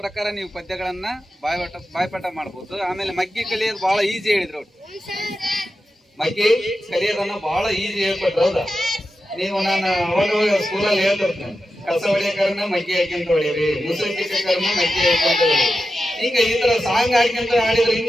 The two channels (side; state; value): both; normal; correlation 0.91